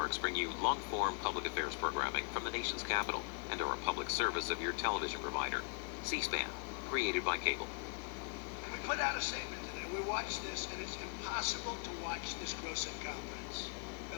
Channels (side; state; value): right; quieter; 37.9 dB